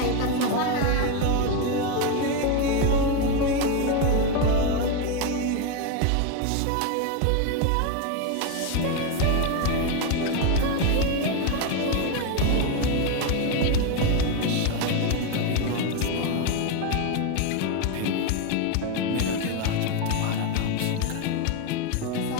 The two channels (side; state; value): both; different; correlation 0.02